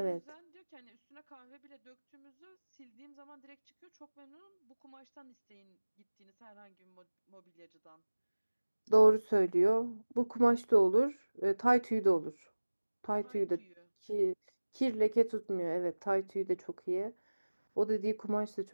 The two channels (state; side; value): inverted; both; correlation -1.00